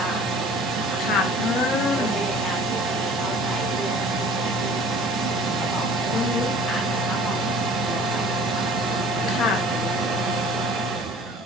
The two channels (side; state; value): both; normal; correlation 0.48